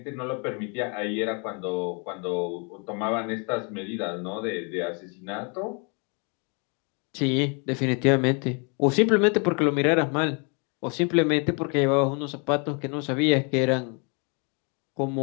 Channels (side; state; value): right; quieter; 35.3 dB